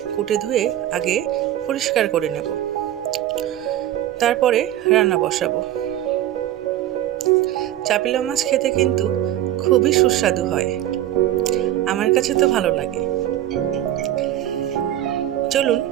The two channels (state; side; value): quieter; left; 12.8 dB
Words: কুটে ধুয়ে আগে পরিষ্কার করে নেব, তারপরে রান্না বসাবো। চাপিলা মাছ খেতে কিন্তু খুবই সুস্বাদু হয়, আমার কাছে তো ভালো লাগে। চলুন,